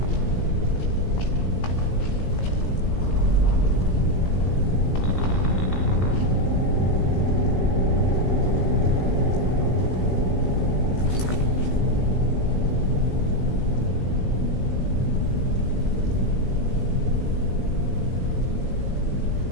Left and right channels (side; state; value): right; late; 18 ms